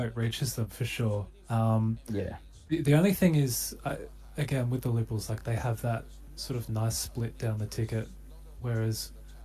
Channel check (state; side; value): identical; both; correlation 1.00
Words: reaches them for sure. Yeah. The only thing is, again, with the Liberals, like they have that sort of nice split down the ticket, whereas